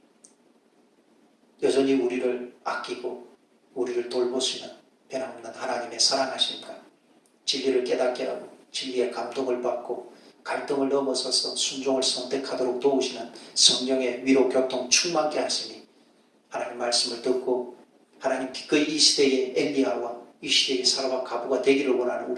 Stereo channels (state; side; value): identical; both; correlation 1.00